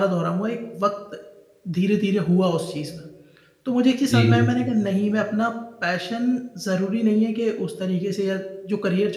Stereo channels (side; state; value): both; identical; correlation 1.00